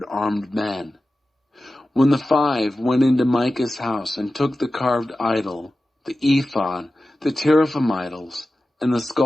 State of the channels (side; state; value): both; normal; correlation 0.94